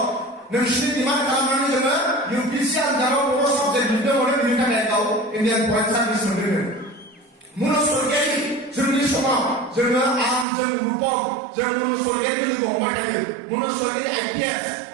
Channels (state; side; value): drops out; left; at 10.5 s